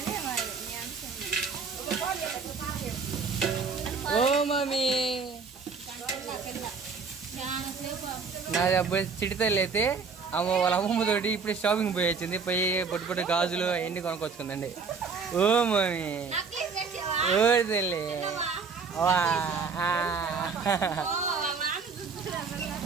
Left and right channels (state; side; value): quieter; left; 5.1 dB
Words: ఓ మమ్మీ నాది అప్పుడు చిటితల్లి అయితే వాళ్ళ అమ్మమ్మతోటి ఇప్పుడు షాపింగ్ పోయి వచ్చింది పోయి పొట్టి గాజులు అవన్నీ కొనుక్కొచ్చుకుందండి ఓ మమ్మీ ఓ తల్లి